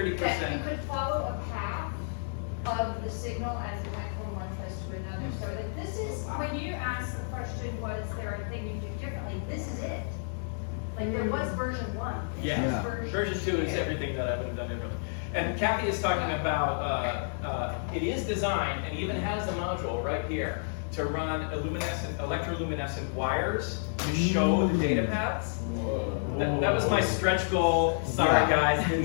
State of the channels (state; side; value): silent; right; digital silence